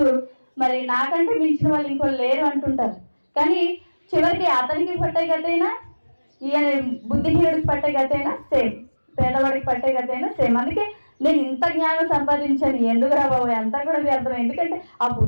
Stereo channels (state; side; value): inverted; both; correlation -1.00